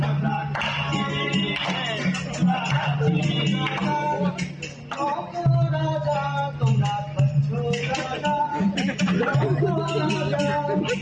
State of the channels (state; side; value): identical; both; correlation 1.00